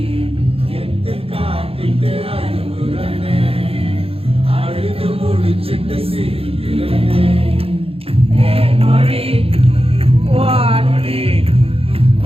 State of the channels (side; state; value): left; late; 0.28 ms